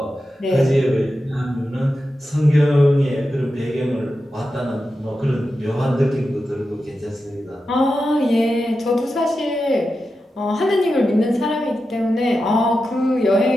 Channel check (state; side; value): normal; both; correlation 0.90